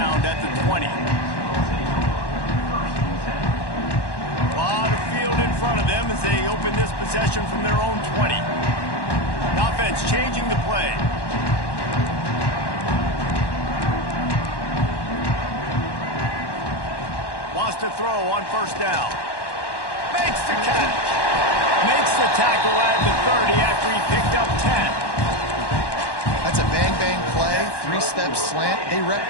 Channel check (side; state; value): right; late; 1.1 ms